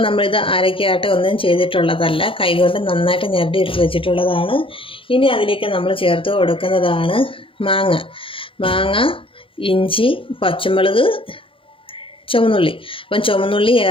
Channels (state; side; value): late; right; 0.26 ms